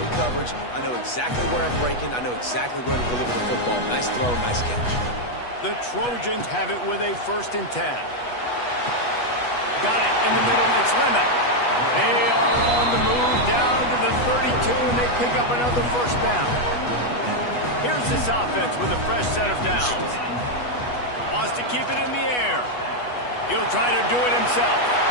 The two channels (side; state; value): right; late; 8.2 ms